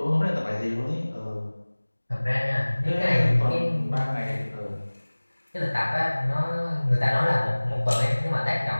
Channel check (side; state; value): both; inverted; correlation -1.00